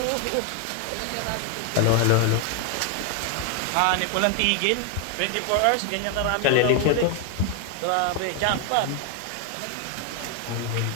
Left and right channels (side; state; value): both; different; correlation 0.01